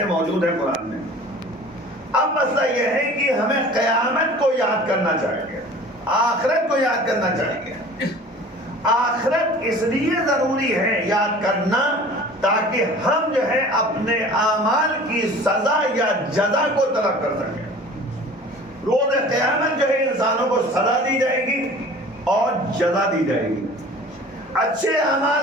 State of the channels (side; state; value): both; normal; correlation 0.44